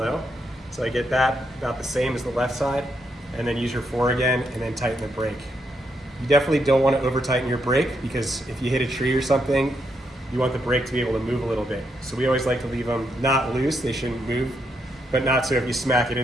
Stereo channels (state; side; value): normal; both; correlation 0.79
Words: So I get that about the same as the left side, and then use your 4 again, and then tighten the brake. You definitely don't want to over tighten your brake, because if you hit a tree or something, you want the brake to be able to move a little bit. So we always like to leave them not loose, they shouldn't move, but not so if you smack it